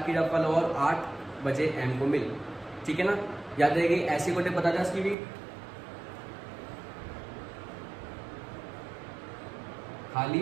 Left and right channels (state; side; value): drops out; left; at 5.2 s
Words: की रफल और 8 बजे एम को मिल, ठीक है ना। याद रहेगी। ऐसी कोटे पता था इसकी भी,